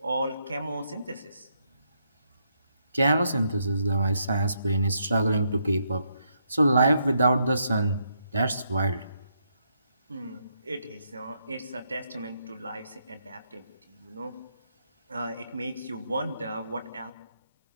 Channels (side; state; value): both; inverted; correlation -0.77